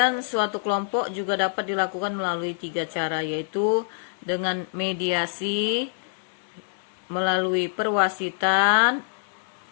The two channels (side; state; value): right; silent; digital silence